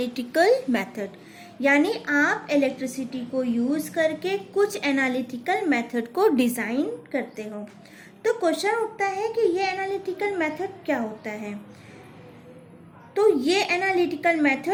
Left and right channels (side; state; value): both; identical; correlation 1.00